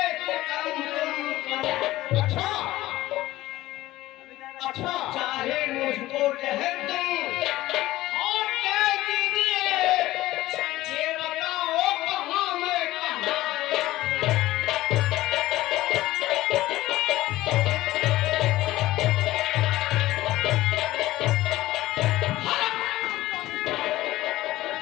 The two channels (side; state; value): right; quieter; 16.5 dB